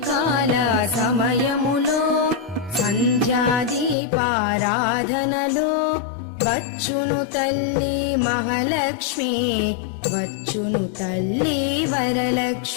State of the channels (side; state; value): right; drops out; at 4.0 s